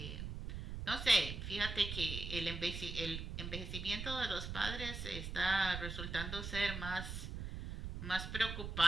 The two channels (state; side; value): noise; right; rumble, 6 dB below the sound